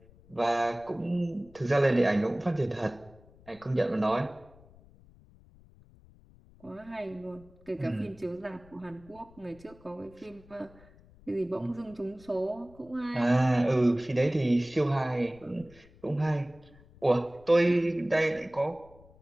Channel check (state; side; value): noise; left; rumble, 25 dB below the sound